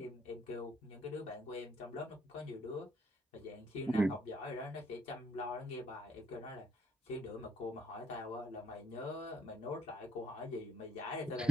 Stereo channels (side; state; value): both; normal; correlation 0.73